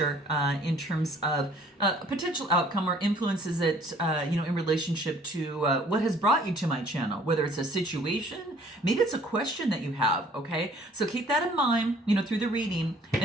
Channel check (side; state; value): both; normal; correlation 0.57